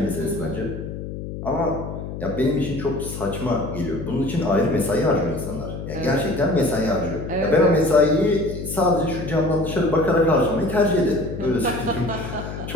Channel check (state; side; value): noise; left; hum, 8 dB below the sound